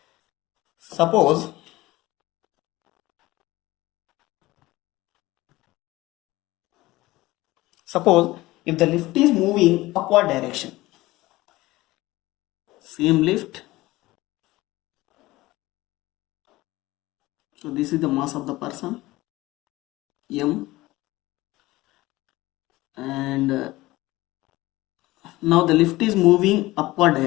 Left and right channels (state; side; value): quieter; right; 18.8 dB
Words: Suppose if the lift is moving upward direction, same lift. So this is the mass of the person m, and now the lift is moving upward